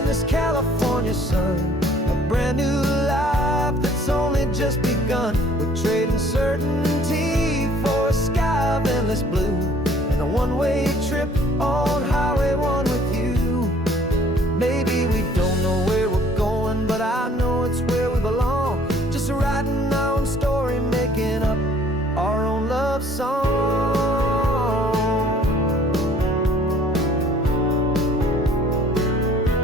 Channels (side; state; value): both; normal; correlation 0.56